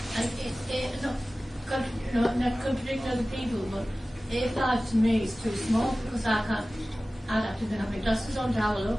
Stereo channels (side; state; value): both; normal; correlation 0.97